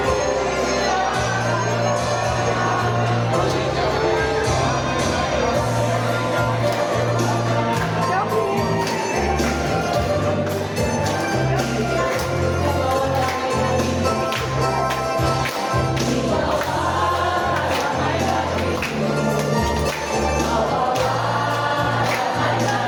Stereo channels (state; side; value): identical; both; correlation 1.00